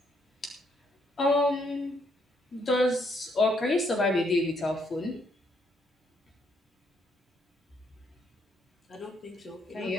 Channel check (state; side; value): normal; both; correlation 0.72